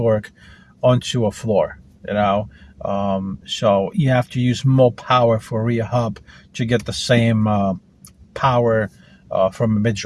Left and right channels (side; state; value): both; identical; correlation 1.00